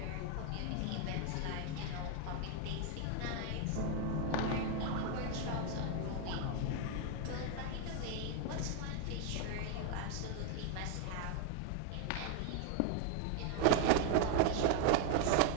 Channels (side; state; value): both; different; correlation 0.00